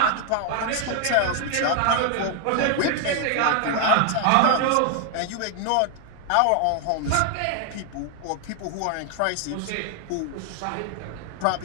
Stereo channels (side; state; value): both; different; correlation 0.00